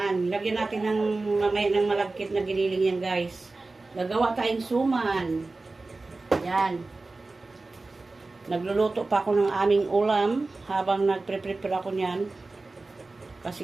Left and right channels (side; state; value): left; quieter; 3.4 dB